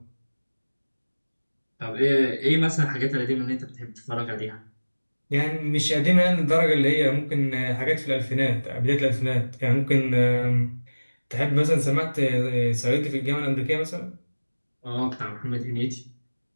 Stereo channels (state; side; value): inverted; both; correlation -1.00